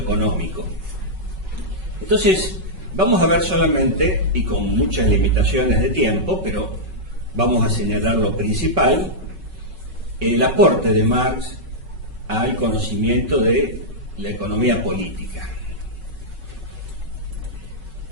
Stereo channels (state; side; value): late; left; 5.3 ms